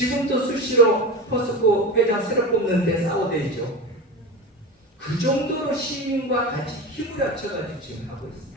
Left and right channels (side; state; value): both; normal; correlation 0.26